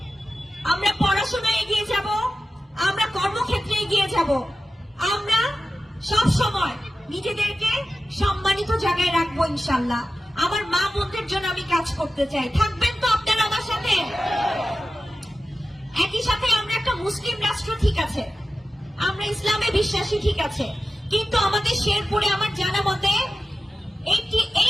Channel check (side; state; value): both; normal; correlation 0.94